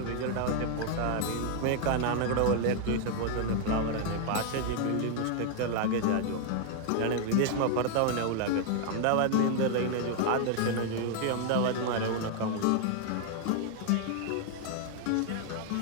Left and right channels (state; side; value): different; both; correlation 0.00